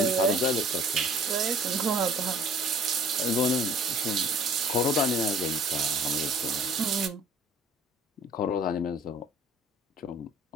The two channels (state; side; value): normal; both; correlation 0.53